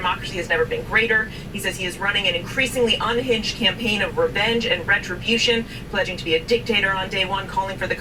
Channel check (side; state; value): both; identical; correlation 1.00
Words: has never been greater. He says he is running an increasingly unhinged campaign of revenge and retribution, pledging to be a dictator on day one, calling for the